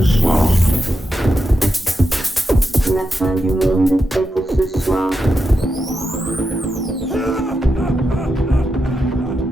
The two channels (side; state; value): both; normal; correlation 0.87